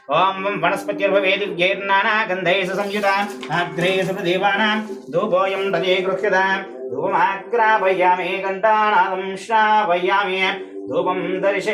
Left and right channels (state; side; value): identical; both; correlation 1.00